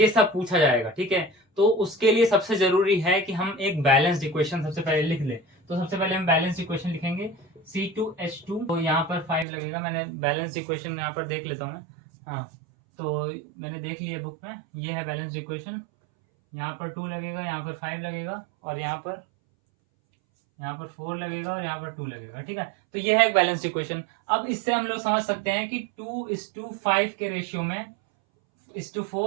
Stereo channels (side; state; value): left; drops out; at 9.5 s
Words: सब पूछा जाएगा, ठीक है। तो उसके लिए सबसे जरूरी है कि हम एक बैलेंस्ड इक्वेशन सबसे पहले लिख लें। तो सबसे पहले हम बैलेंस्ड इक्वेशन लिखेंगे C2H2, तो यहाँ पर 5 लगेगा, मैंने बैलेंस्ड इक्वेशन यहाँ पर देख लेता हूँ मैं, हाँ तो मैंने देख लिया बुक में, ये है बैलेंस्ड इक्वेशन, यहाँ पर 2 लगेगा, यहाँ पर 5 लगेगा, और यहाँ पर 4 लगेगा, और यहाँ पर 2 लगेगा, ठीक है। तो ये है एक बैलेंस्ड इक्वेशन। अब इससे हम लोग समझ सकते हैं कि 2:5 के रेशियो में,